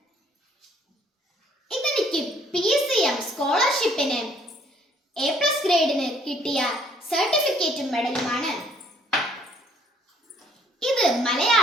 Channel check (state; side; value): normal; both; correlation 0.62